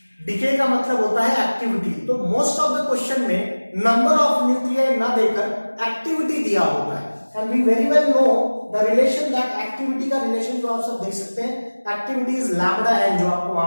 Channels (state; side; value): inverted; both; correlation -1.00